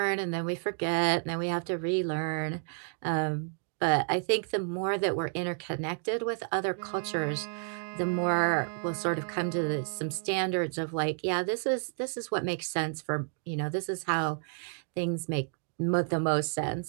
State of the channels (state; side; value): silent; left; 57 dB below the other